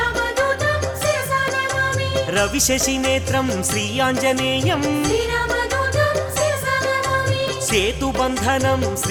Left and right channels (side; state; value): both; identical; correlation 1.00